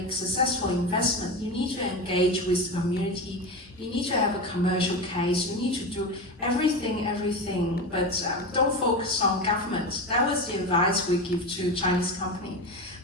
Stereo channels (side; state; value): both; normal; correlation 0.22